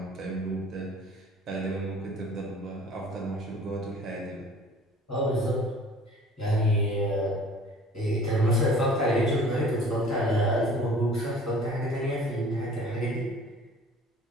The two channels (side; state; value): both; normal; correlation 0.48